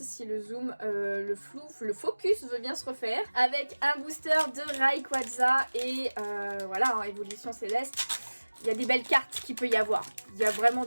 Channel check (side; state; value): both; inverted; correlation -1.00